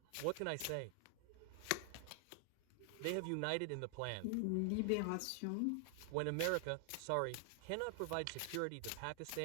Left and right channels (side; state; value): both; different; correlation 0.00